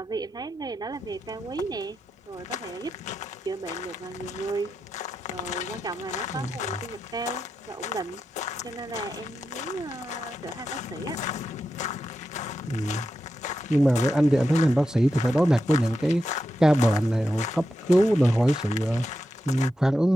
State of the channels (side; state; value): both; normal; correlation 0.88